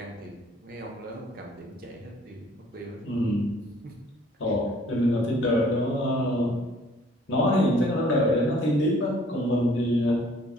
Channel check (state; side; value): normal; both; correlation 0.57